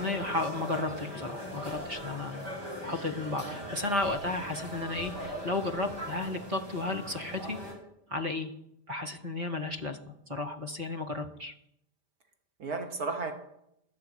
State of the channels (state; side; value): late; left; 5.1 ms